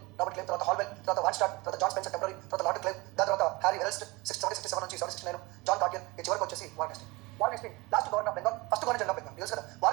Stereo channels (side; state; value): left; quieter; 23.6 dB